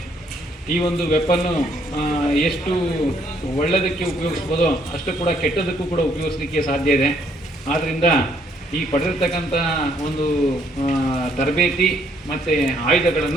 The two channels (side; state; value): both; normal; correlation 0.68